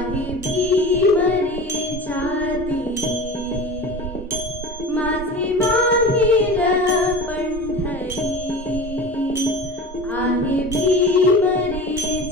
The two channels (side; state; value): both; normal; correlation 0.34